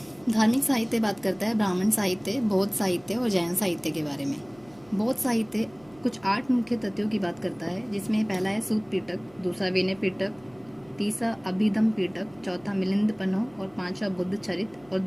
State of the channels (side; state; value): right; noise; hum, 27 dB below the sound